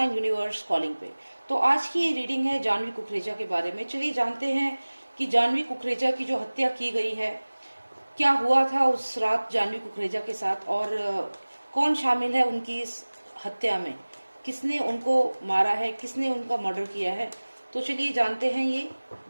universe calling पे। तो आज की ये रीडिंग है जानवी कुकरेजा के बारे में। चलिए जानते हैं कि जानवी कुकरेजा की जो हत्या की गई है, क्या हुआ था उस रात जानवी कुकरेजा के साथ और कौन शामिल है उनकी इस हत्या में, किसने उनको मारा है, किसने उनका मर्डर किया है। तो चलिए जानते हैं। ये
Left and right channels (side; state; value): both; inverted; correlation -1.00